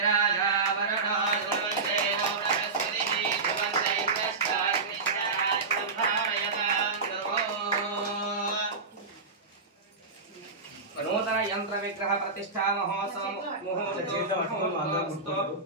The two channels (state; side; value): quieter; left; 4.2 dB